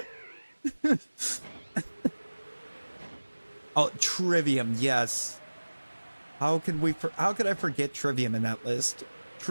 Oh, Trivium, yes. How could I forget Trivium in that list?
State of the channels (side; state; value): both; inverted; correlation -1.00